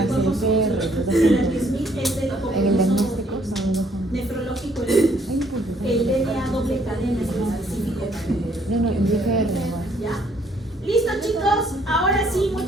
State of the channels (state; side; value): normal; both; correlation 0.66